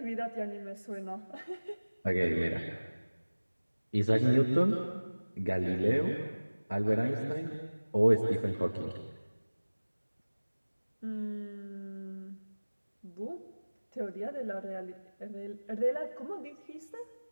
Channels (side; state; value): both; inverted; correlation -1.00